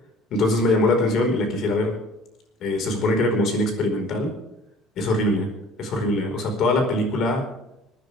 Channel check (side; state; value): both; normal; correlation 0.49